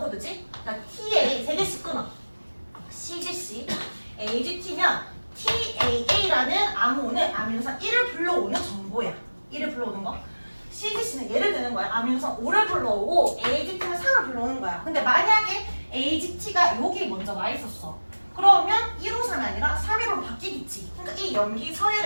코드지? 그러니까 TA 3개씩 끊어. CGC, AGT면 TAA라는 암호는 아미노산 1을 불러오는 정보야. 1을 불러오는 거. CGC는 예를 드는 거야. 아미노산 5를 불러오고 AGT는 3을 불러오는 거야. 근데 만약에 AGT가 여기 먼저 와 있었어. 그러면 153이 아니라 315로 바뀌겠지. 그러니까 이 염기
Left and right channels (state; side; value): inverted; both; correlation -1.00